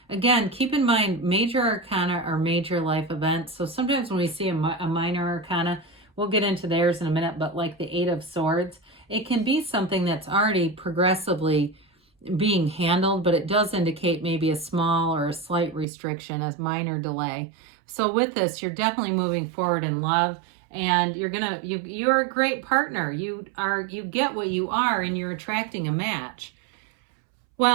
keep in mind, major arcana are major life events. So sometimes when we see a minor arcana, we'll get into theirs in a minute, but like the Eight of Swords, it can be something that's already progressively being handled, but it does indicate maybe a small or a slight restriction, a minor delay. So with this, you're definitely moving forward in love, and you're a great partner. You get what you are, and you're attracting a match.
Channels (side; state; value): left; drops out; at 15.9 s